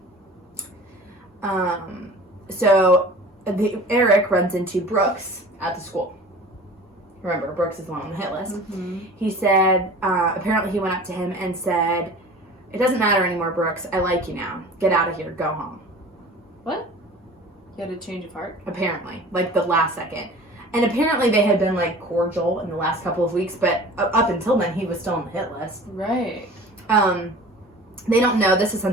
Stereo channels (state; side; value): normal; both; correlation 0.42